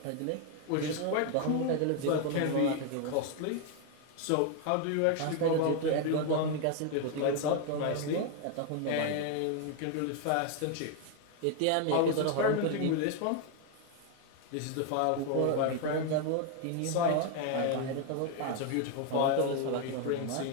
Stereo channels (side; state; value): both; different; correlation 0.01